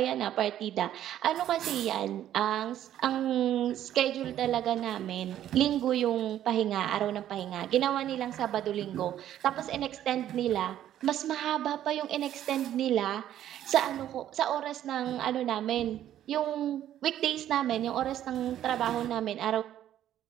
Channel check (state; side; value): quieter; left; 11.7 dB